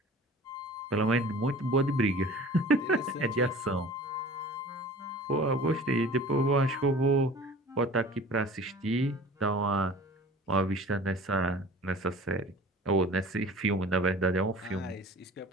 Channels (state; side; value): normal; both; correlation 0.43